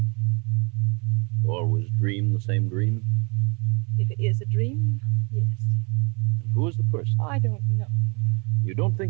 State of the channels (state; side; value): quieter; left; 32.3 dB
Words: You always dream the same dream? If it is a dream, yes. And who is the person? I don't know. You don't